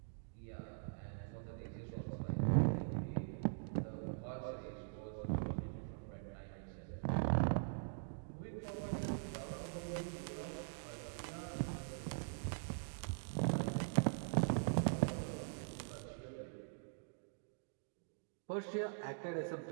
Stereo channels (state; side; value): silent; left; digital silence